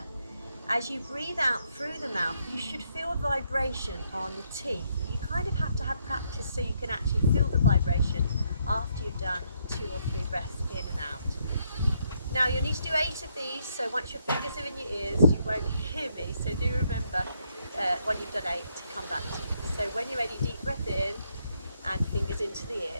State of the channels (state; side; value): inverted; both; correlation -0.74